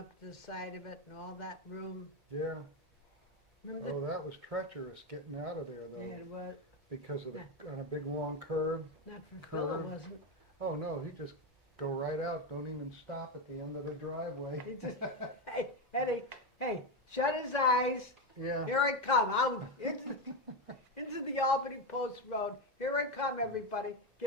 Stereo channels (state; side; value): normal; both; correlation 0.11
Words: to the side of it and all that room? Yeah. Remember Oh, that was treacherous getting out of there the, though, yeah, it was, because of on a big long curve. not for Phil, it Curve. wasn't. Oh no, he just go right out. Don't even stop at the end of the driveway. He just, hey, Eddie, hey, shut his eyes. Yeah. Here I come. I'm into the Albany Post Road. Here I come, everybody.